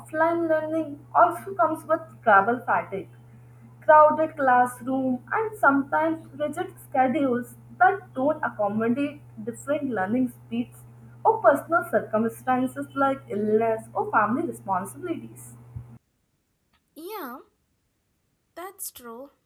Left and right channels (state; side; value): identical; both; correlation 1.00